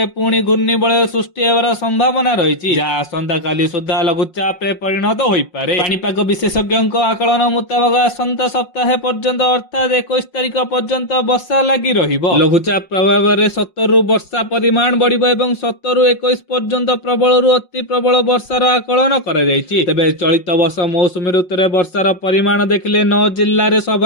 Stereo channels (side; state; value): right; late; 5.6 ms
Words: ପୁଣି ଘୂର୍ଣ୍ଣିବଳୟ ସୃଷ୍ଟି ହେବାର ସମ୍ଭାବନା ରହିଛି, ଯାହା ଆସନ୍ତାକାଲି ସୁଦ୍ଧା ଲଘୁଚାପରେ ପରିଣତ ହୋଇପାରେ। ପାଣିପାଗ ବିଶେଷଜ୍ଞଙ୍କ ଆକଳନ ମୁତାବକ ଆସନ୍ତା ସପ୍ତାହ ପର୍ଯ୍ୟନ୍ତ ଅର୍ଥାତ୍ 21 ତାରିଖ ପର୍ଯ୍ୟନ୍ତ ବର୍ଷା ଲାଗି ରହିବ। ଲଘୁଚାପ ପ୍ରଭାବରେ 70ରୁ ବର୍ଷା ପରିମାଣ ବଢିବ ଏବଂ 17ରୁ 21 ପର୍ଯ୍ୟନ୍ତ ପ୍ରବଳରୁ ଅତି ପ୍ରବଳ ବର୍ଷାର ଆକଳନ କରାଯାଇଛି। ତେବେ ଚଳିତ ବର୍ଷ ମୌସୁମୀ ଋତୁରେ ବର୍ଷାର ପରିମାଣ ଦେଖିଲେ 9 ଜିଲ୍ଲାରେ